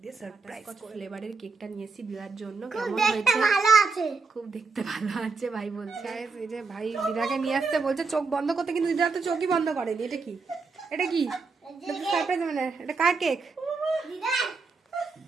দিয়ে সারপ্রাইজ ফ্লেভারের কেকটা নিয়েছি দিদার জন্য। কেমন হয়েছে? খুব দেখতে ভালো আছে ভাই বলছে। এই যে ভাই দিদাকে নিয়ে আসতে বলছে চোখ বন্ধ করতে, কিন্তু দিদা তো চোখই বন্ধ করেনি। এটা কি? এটা কি সারপ্রাইজ? মানে এটা কার কেক? দিদা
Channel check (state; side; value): quieter; left; 4.4 dB